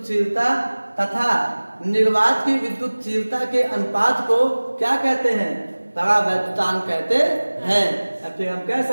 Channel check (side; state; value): both; inverted; correlation -1.00